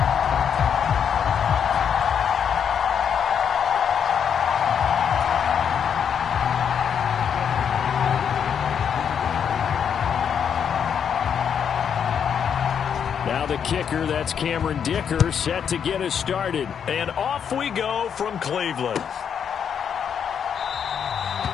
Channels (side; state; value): right; quieter; 7.7 dB